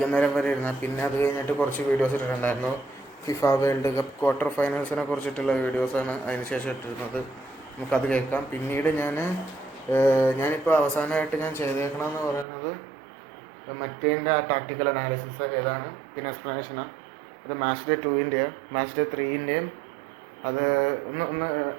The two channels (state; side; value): drops out; left; at 12.5 s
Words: വരെ ഇരുന്ന. പിന്നെ അത് കഴിഞ്ഞിട്ട് കുറച്ച് വീഡിയോസ് ഇട്ടിട്ടുണ്ടായിരുന്നു. ഫിഫ വേൾഡ് കപ്പ് ക്വാർട്ടർ ഫൈനൽസിനെ കുറിച്ചിട്ടുള്ള വീഡിയോസാണ് അതിന് ശേഷം ഇട്ടിരുന്നത്. നമുക്കത് കേൾക്കാം. പിന്നീട് ഞാനിപ്പോൾ അവസാനമായിട്ട് ഞാൻ ചെയ്തേക്കണമെന്ന് പറയുന്നത് മറ്റേതിൻ്റെ ആ ടാക്ടിക്കൽ അനാലിസിസ് ഏതാണ്, പിന്നെ എക്സ്പ്ലനേഷനാണ്. അത് മാച്ച് ഡേ 2-ൻ്റെയും മാച്ച് ഡേ 3-ൻ്റെയും അത്